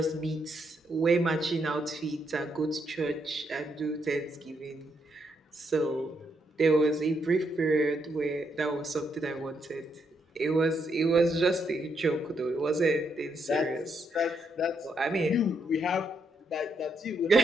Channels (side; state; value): both; normal; correlation 0.77